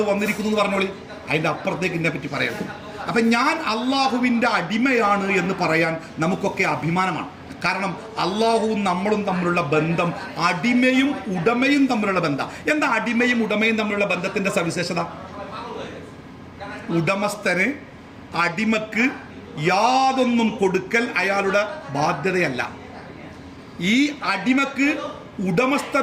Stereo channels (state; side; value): identical; both; correlation 1.00